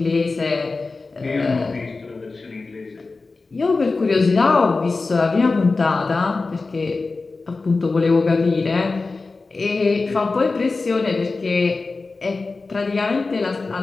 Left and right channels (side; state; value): right; quieter; 3.8 dB